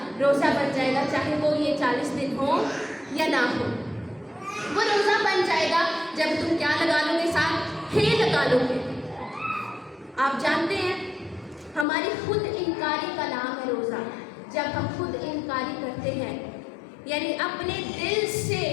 روزہ بن جائے گا، چاہے وہ یہ 40 دن ہو یا نہ ہو۔ وہ روزہ بن جائے گا جب تم کیا لگا لو گے ساتھ؟ ہے لگا لو گے۔ آپ جانتے ہیں ہماری خود انکاری کا نام ہے روزہ۔ جب ہم خود انکاری کرتے ہیں، یعنی اپنے دل سے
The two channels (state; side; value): drops out; right; at 11.9 s